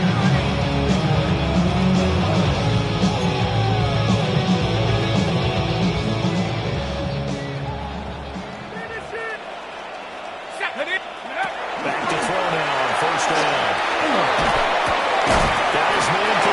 Back to throw now on 1st down. That is man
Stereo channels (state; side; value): identical; both; correlation 1.00